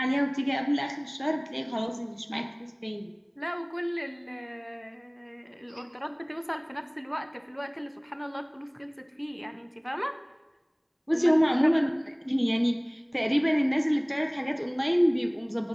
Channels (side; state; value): both; identical; correlation 1.00